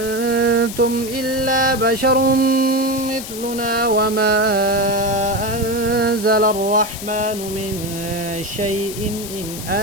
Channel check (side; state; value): left; noise; hiss, 10 dB below the sound